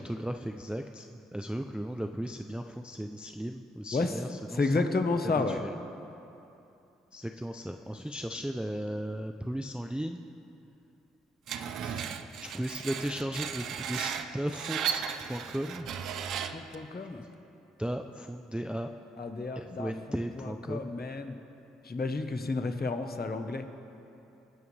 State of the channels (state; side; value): normal; both; correlation 0.77